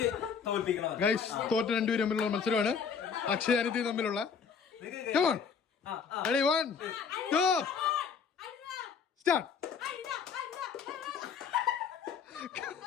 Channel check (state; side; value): quieter; right; 6.3 dB